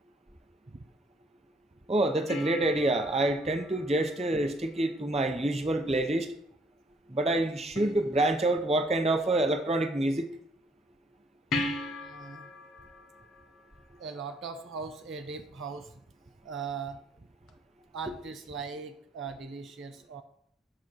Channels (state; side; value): normal; both; correlation 0.65